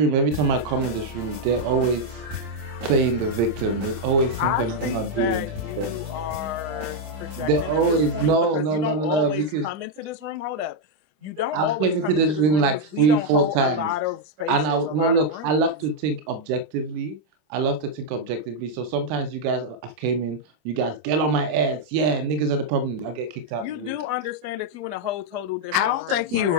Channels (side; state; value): left; late; 26 ms